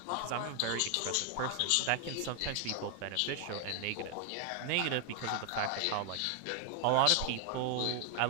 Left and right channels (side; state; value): both; different; correlation 0.00